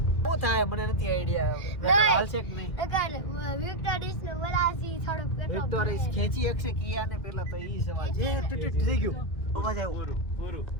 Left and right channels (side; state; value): right; late; 2.3 ms